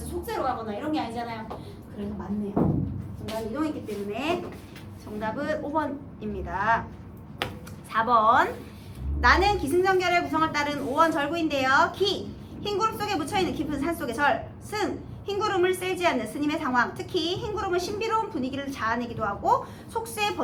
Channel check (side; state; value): both; identical; correlation 1.00